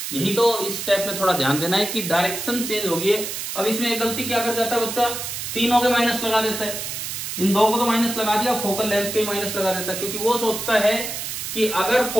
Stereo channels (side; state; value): right; noise; hiss, 5 dB below the sound